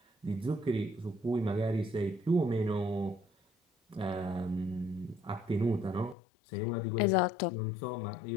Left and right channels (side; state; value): right; drops out; at 6.2 s